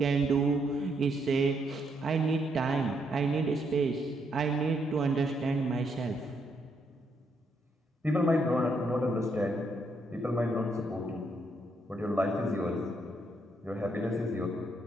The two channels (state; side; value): normal; both; correlation 0.75